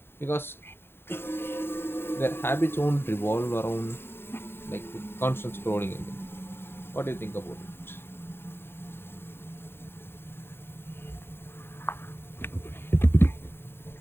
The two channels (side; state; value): right; late; 0.11 ms